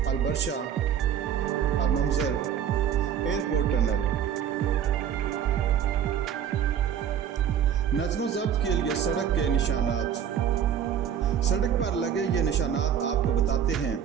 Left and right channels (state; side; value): quieter; left; 8.8 dB